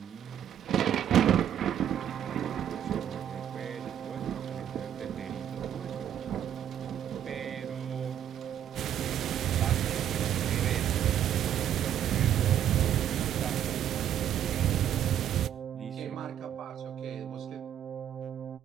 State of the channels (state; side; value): quieter; left; 10.1 dB